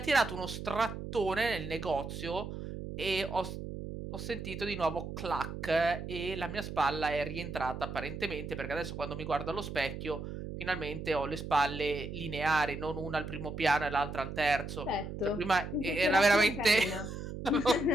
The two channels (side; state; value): right; noise; hum, 7 dB below the sound